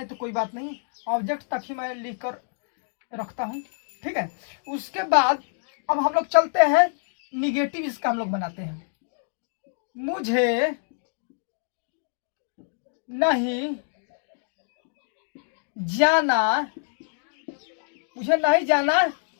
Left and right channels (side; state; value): right; silent; digital silence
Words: तो कोई बात नहीं, ऑब्जेक्ट तक ही मैं लिख कर रखता हूँ। ठीक है, उसके बाद अब हम लोग चलते हैं निगेटिव, इसका हम लोग बनाते हैं। मुझे नहीं जाना